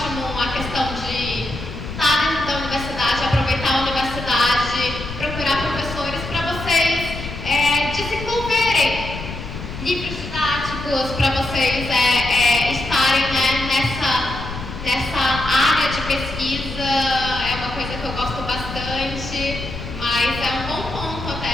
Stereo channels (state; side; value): noise; left; rumble, 9 dB below the sound